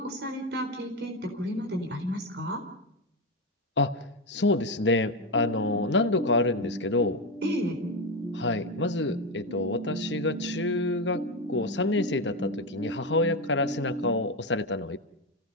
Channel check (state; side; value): normal; both; correlation 0.13